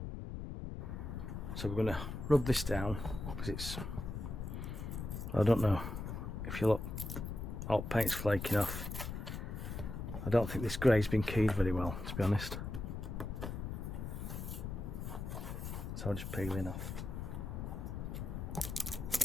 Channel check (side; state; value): left; noise; rumble, 5 dB below the sound